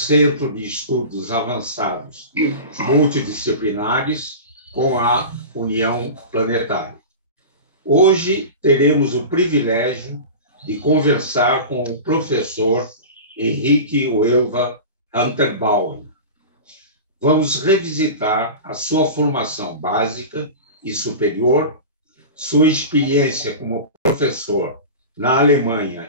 de Estudos Avançados Multidisciplinares, com a União Planetária. Hoje teremos o privilégio de conversar com o professor Henrique Uelva Hunterbauen. Vamos revisitar a sua formação básica e superior, sua experiência como professor na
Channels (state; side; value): inverted; both; correlation -0.30